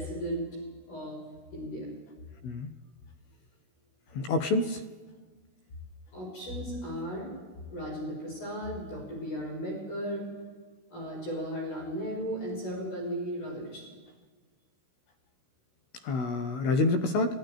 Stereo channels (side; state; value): right; late; 16 ms